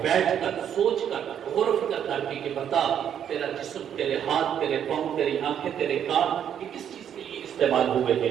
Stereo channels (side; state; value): left; quieter; 9.1 dB